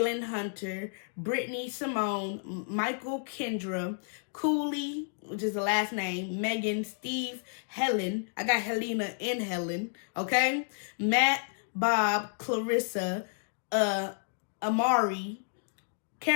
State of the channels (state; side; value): silent; right; digital silence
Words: Hunter, Brittany, Simone, Michael, Kendra, Cooley, which is the last name, Megan, Steve, Helen. I got Helena and Helen. Okay? Matt, Bob, Clarissa, Amari,